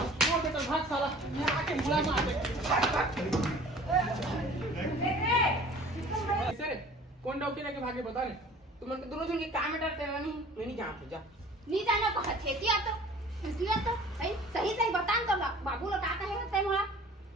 के तो भाग साला ये आके मुला मार दे ऐसे कौन डॉक्टर लेके भागे बता रे तुम उनके दोनों जन के काम में डरते नहीं मैं नहीं जानते जा नी जानो पछेतिया तो है सही बता तो बाबू ला का कहे हस्ते मोला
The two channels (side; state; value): both; normal; correlation 0.47